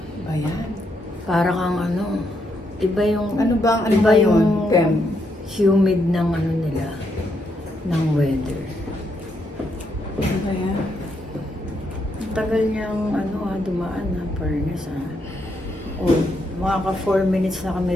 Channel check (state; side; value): normal; both; correlation 0.78